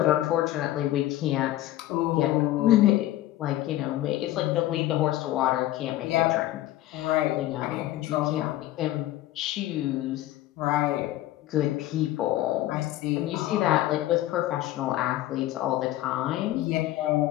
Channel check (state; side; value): quieter; right; 14.9 dB